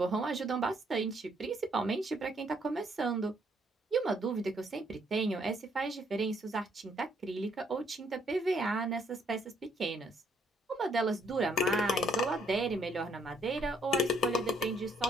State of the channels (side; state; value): both; normal; correlation 0.69